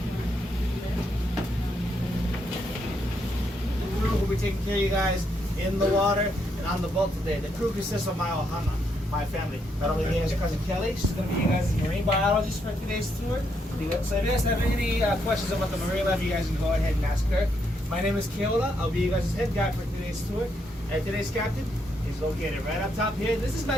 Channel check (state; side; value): normal; both; correlation 0.77